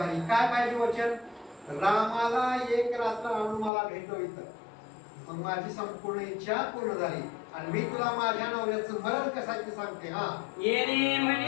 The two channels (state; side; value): drops out; right; at 3.7 s